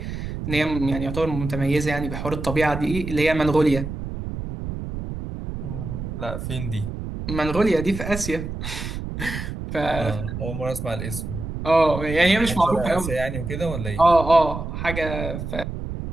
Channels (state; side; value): noise; right; rumble, 6 dB below the sound